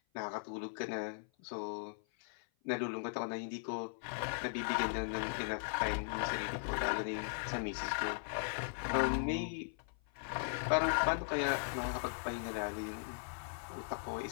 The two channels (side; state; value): right; silent; 52 dB below the other